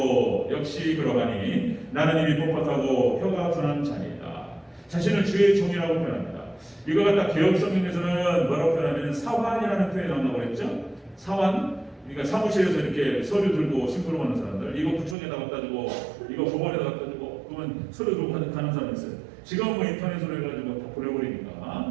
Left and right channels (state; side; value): drops out; left; at 15.2 s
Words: 역시 그러하니 나는 입이 뻣뻣하고 혀가 둔한 자니이다. 자신을 주의 종이라고 표현합니다. 이거 갖다 개혁 성경에서는 뭐라고 표현하면 사환이라는 표현이 나온다고 그랬죠. 사환. 그러니까 사무실에서 이렇게 서류 들고 심부름하는 사람들, 이거 구청에다 갖다 주고, 이거 법원에다 갖다 주고, 그러면 서류 들고 가는 사람이 있어요. 지금은 뭐 인터넷으로 해가지고 다